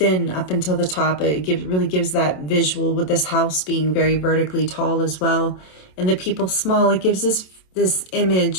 up until the top, it really gives that visual, with this house being very vertically tall as well, and the people small. It gives us this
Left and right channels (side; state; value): right; late; 27 ms